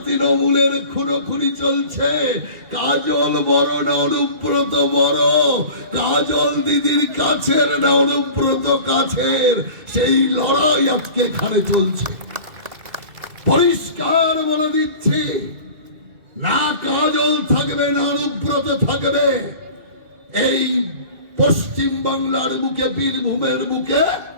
তৃণমূলের খুনোখুনি চলছে। কাজল বড় না অনুব্রত বড়, কাজল দিদির কাছের না অনুব্রত কাছের, সেই লড়াই আজকে এখানে চলছে। পরিষ্কার বলে দিচ্ছি, না কাজল থাকবে না অনুব্রত থাকবে এই পশ্চিম বাংলার বুকে, বীরভূমের বুকে।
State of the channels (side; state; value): left; late; 2.3 ms